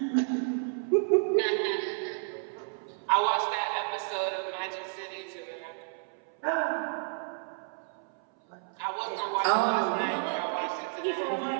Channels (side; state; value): left; silent; 57 dB below the other